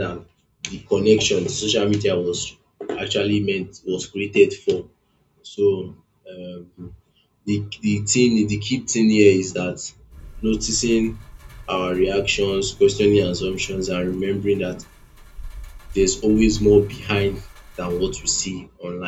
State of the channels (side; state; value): both; identical; correlation 1.00